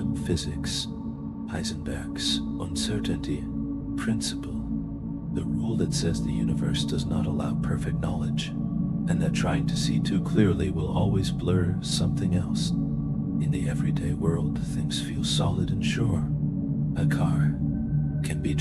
physics, Heisenberg's uncertainty principle, the rule that says the universe does not allow perfect knowledge, and that trying to see too clearly will always blur something else. In the everyday world, things feel solid and sure. A car can be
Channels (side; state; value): both; identical; correlation 1.00